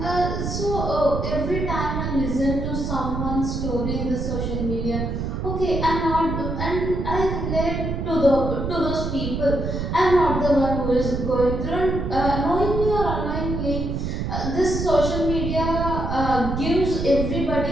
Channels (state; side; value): noise; right; rumble, 3 dB below the sound